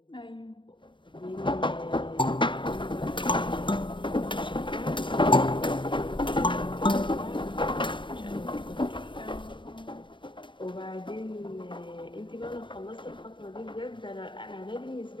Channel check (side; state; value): right; late; 0.23 ms